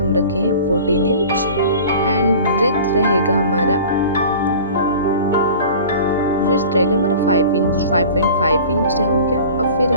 रखे हैं 14 इंच एंड विड्थ रहेगा हमारा 5 इंच। 5.5 इंच हो गया। अब फिर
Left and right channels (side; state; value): both; inverted; correlation -0.41